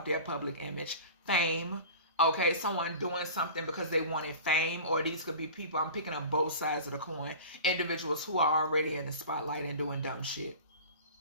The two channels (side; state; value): both; inverted; correlation -0.37